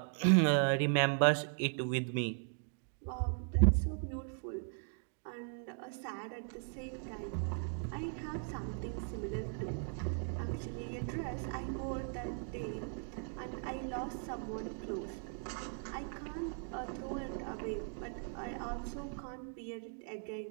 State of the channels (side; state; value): left; silent; 52 dB below the other